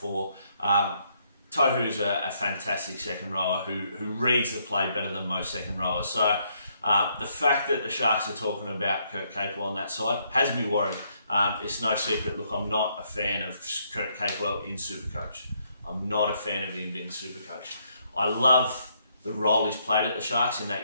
Tohu's a fantastic second rower who reads the play better than most second rowers. So the fact that the Sharks are talking about Kurt Capewell on that side has me worried. It's no secret. Look, I'm not a fan of Kurt Capewell in Supercoach. I'm not a fan of him in Supercoach. I love the role he's played at the Sharks, in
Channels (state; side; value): inverted; both; correlation -0.73